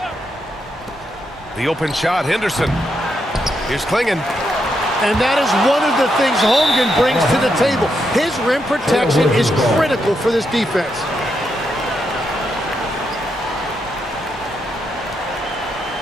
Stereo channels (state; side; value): normal; both; correlation 0.81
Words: The open shot, Henderson. Here's Klingon. And that is one of the things Holmgren brings to the table. His rim protection is critical for this defense.